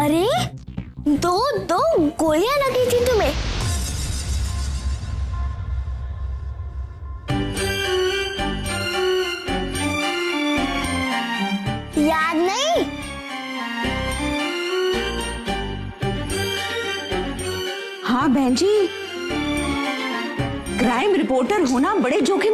दो गोलियां लगी थी तुम्हें। याद नहीं? हाँ बहन जी, क्राइम रिपोर्टर होना बड़े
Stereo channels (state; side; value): identical; both; correlation 1.00